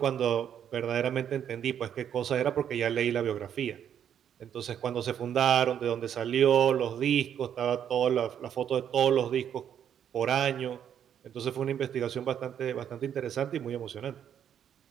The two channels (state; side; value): quieter; left; 9.2 dB